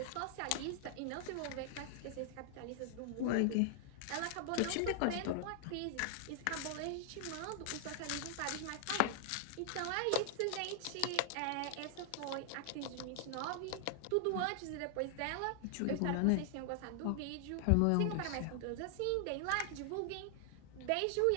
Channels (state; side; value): different; both; correlation 0.00